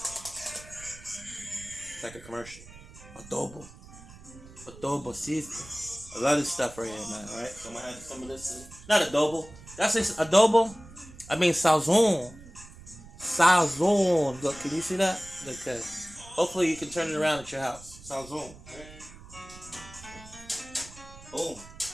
it's like a commercial, adobo seasoning. I love this stuff right here, man. All right, so I'm gonna add some of this in. Not adobo. That's it. Adobo. I mean sazon. Sazon. Look, can you see that? Okay. Hopefully you can turn it around at your house. Sazon. Right? Boom.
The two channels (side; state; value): right; noise; rumble, 19 dB below the sound